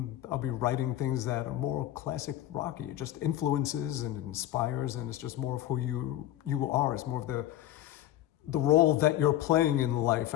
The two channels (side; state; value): right; quieter; 13.3 dB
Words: things that are more classic rocky. It just influences and inspires, and it's just more of who you are. It's more of the role that you're playing in life